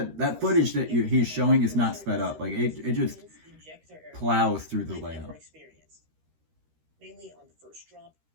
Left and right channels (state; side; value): late; left; 13 ms